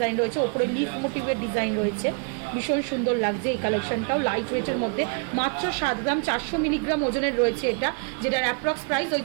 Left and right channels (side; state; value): left; quieter; 39.1 dB